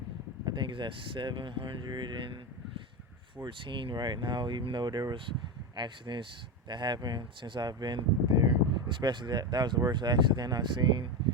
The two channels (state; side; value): normal; both; correlation 0.16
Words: I think it's at 714 right now, even though there was accidents that happened since I've been there. Especially that was the worst accident I've seen